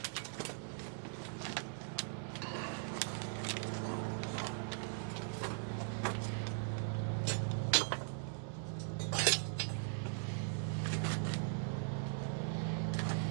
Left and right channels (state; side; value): silent; left; digital silence